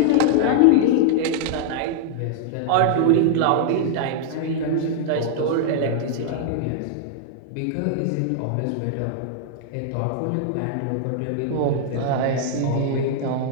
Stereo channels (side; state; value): both; different; correlation -0.01